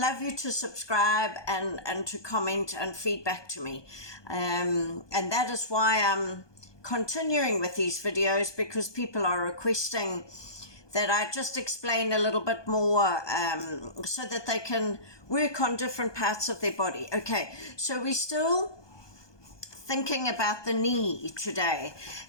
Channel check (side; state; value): right; late; 1.2 ms